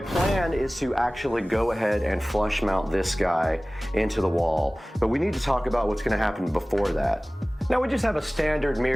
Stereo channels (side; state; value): both; normal; correlation 0.98